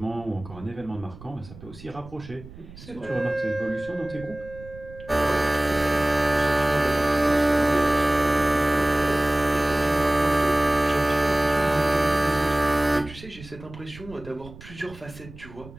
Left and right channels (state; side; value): noise; right; rumble, 18 dB below the sound